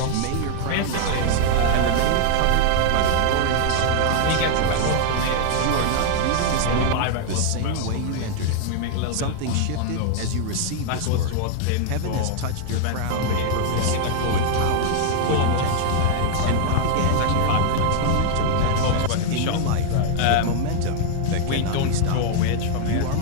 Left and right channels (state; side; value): different; both; correlation 0.00